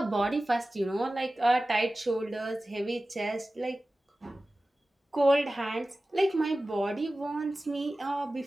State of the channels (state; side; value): normal; both; correlation 0.96